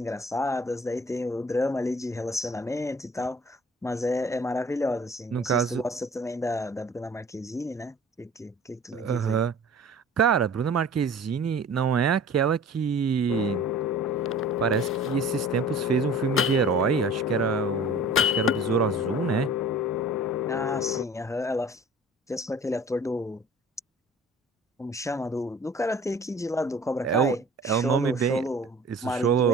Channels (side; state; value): both; normal; correlation 0.45